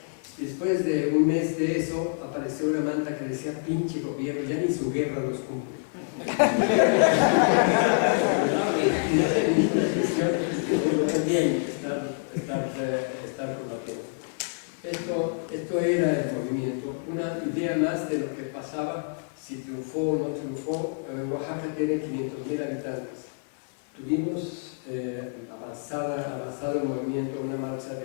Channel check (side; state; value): right; silent; 60 dB below the other